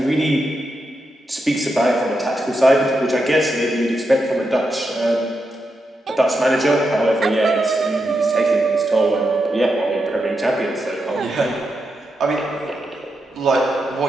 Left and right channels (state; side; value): normal; both; correlation 0.85